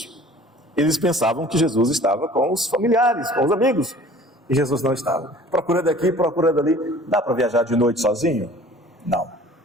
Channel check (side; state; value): both; normal; correlation 0.48